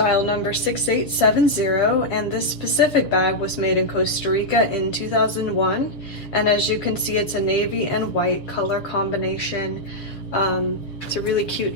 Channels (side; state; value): right; late; 7.1 ms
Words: number 6870, and this specific bag was made in Costa Rica in 2001. And as you can see, it's a navy and white color combination. It's a really cute